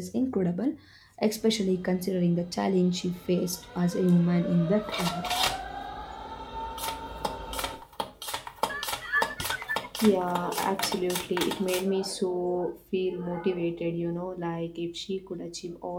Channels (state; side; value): identical; both; correlation 1.00